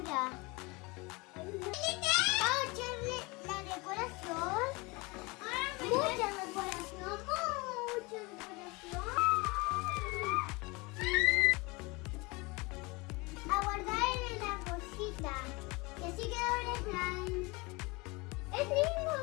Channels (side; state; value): right; quieter; 25.8 dB